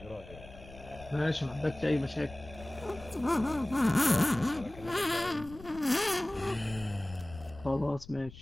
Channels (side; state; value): left; noise; rumble, 17 dB below the sound